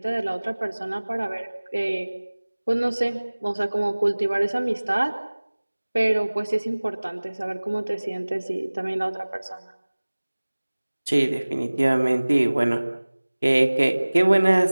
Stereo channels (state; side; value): inverted; both; correlation -1.00